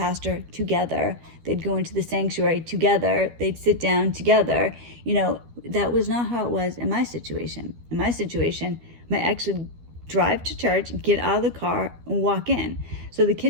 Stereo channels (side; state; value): left; late; 12 ms